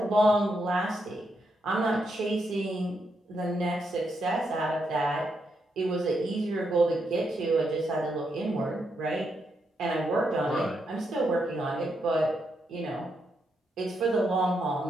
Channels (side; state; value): both; normal; correlation 0.81